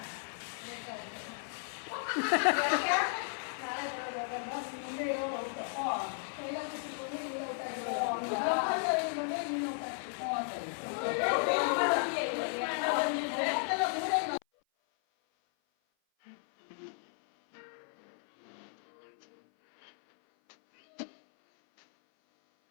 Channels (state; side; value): silent; right; 55 dB below the other